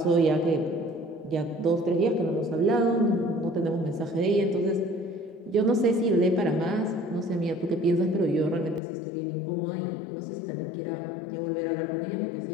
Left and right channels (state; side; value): drops out; right; at 8.8 s